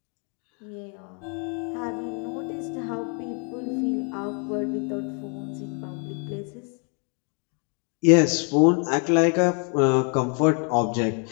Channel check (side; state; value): right; quieter; 39.7 dB